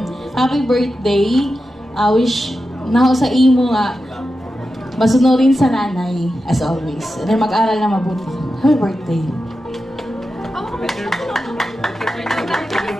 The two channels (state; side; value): normal; both; correlation 0.90